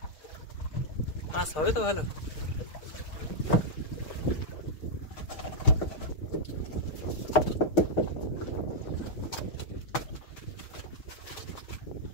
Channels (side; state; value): right; late; 6.6 ms